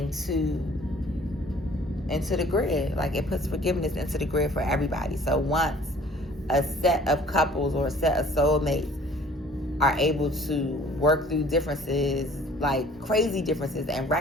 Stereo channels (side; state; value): both; normal; correlation 0.52